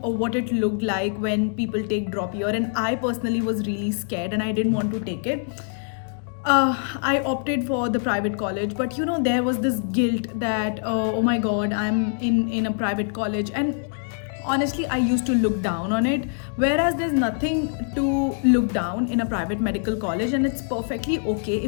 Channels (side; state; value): right; silent; 62 dB below the other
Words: what it looked like when people take drop year, and I personally was really scared and I didn't want to take it. I opted for the private college, but there was this guilt that oh my god, I'm in a private college, and honestly I used to look down on it, whereas there's nothing to look down in a private medical college, and it's perfectly okay